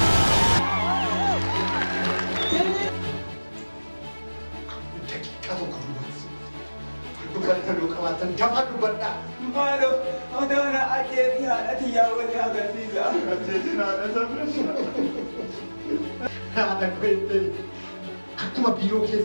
Daqiiqaa tokko duubatti. Fardu galgaloo qabaatan dafaa dubbadhaa. Maaloo odoona ajjeetii haadhati yaawwanii agarsiisa. Ajjeetiin haadha sabreessa. Haadha kweettee akkuma biiroo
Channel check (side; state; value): both; inverted; correlation -1.00